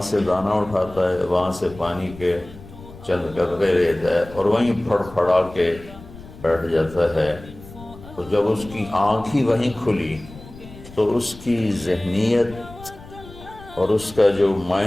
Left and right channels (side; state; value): left; noise; rumble, 18 dB below the sound